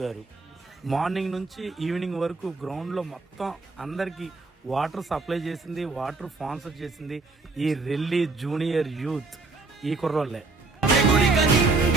గారు. మార్నింగ్ నుంచి ఈవినింగ్ వరకు గ్రౌండ్లో మొత్తం అందరికీ వాటర్ సప్లై చేసింది, వాటర్ స్పాన్సర్ చేసింది ఈ రెల్లి జూనియర్ యూత్ ఈ కుర్రోళ్ళే. ఎగురిక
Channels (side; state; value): left; quieter; 3.7 dB